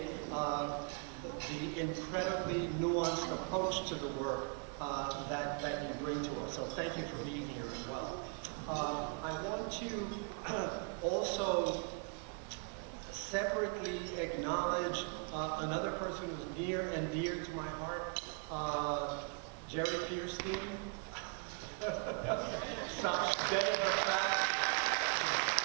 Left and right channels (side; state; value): left; quieter; 34.8 dB